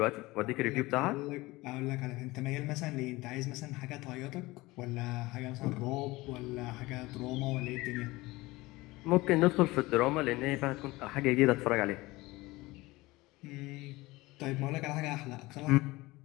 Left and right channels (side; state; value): right; quieter; 20.6 dB